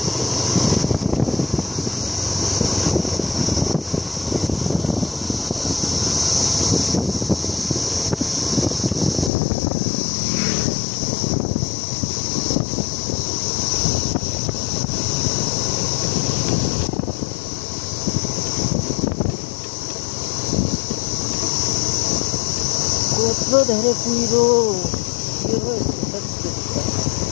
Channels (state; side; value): drops out; right; at 9.3 s